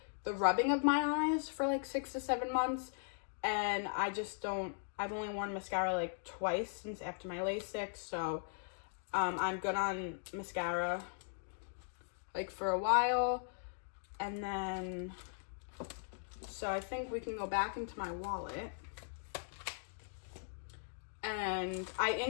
the rubbing of my eyes for like 6 to 7 months. And I've only worn mascara like twice since after my LASIK, so I'm good on mascara like for a while. And then, so I think we can go back into my wallet. And I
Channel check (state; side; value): silent; right; digital silence